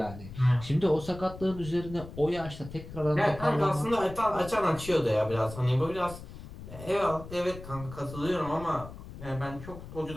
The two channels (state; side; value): noise; left; rumble, 13 dB below the sound